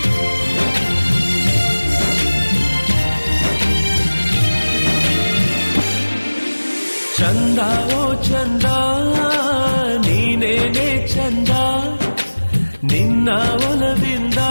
ಚಂದ ಓ ಚಂದ ನೀನೇನೆ ಚಂದ ನಿನ್ನ ಒಲವಿಂದ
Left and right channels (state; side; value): inverted; both; correlation -1.00